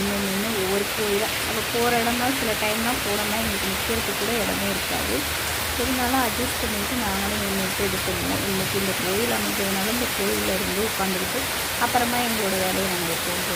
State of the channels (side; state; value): both; identical; correlation 1.00